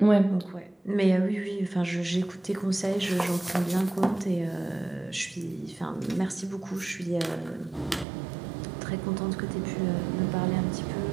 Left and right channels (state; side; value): drops out; left; at 8.1 s